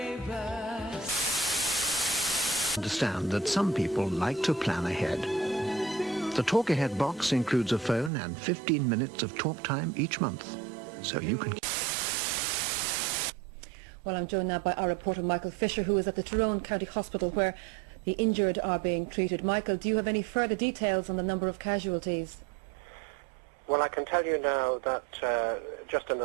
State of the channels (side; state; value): left; drops out; at 8.1 s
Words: Understand that some people like to plan ahead. The Talk Ahead box includes a phone and 15 minutes of talk time each month, so you can... Well, I'm joined now by our reporter Michael Fisher, who is at the Tyrone County Hospital where the injured are being treated. Michael, do you have any further details on the number of casualties? Well, I can tell you now that just in